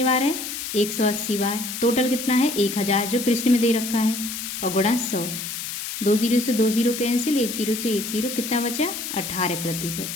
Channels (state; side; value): noise; left; hiss, 6 dB below the sound